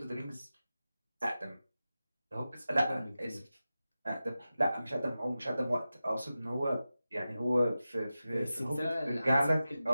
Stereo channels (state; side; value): inverted; both; correlation -0.94